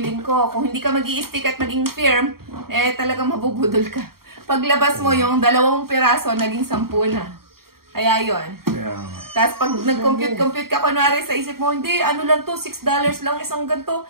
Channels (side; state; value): left; late; 0.93 ms